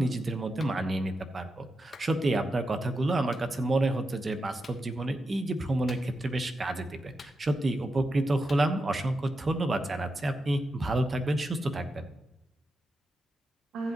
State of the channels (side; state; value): both; normal; correlation 0.87